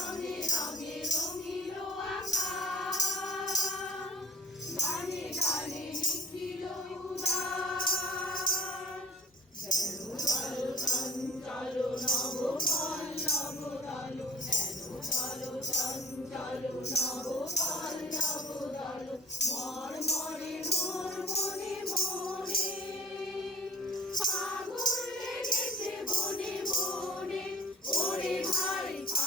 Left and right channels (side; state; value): both; normal; correlation 0.44